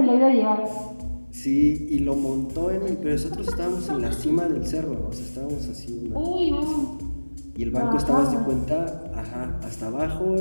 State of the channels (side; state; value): both; inverted; correlation -1.00